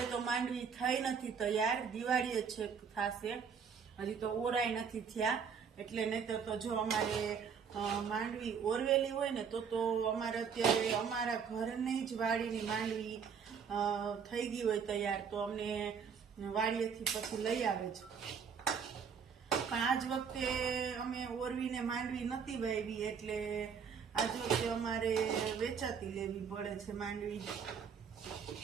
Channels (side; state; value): left; quieter; 6.6 dB